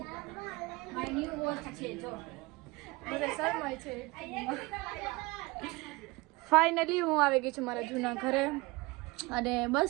My new watch છે જો. બધા શરમાય છે. ફાઇનલી હું આવી ગઈ છું મારા જૂના ઘરે અને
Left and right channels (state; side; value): quieter; left; 23.4 dB